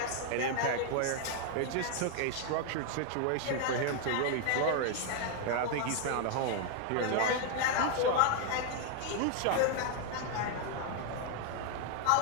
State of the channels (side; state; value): both; different; correlation 0.00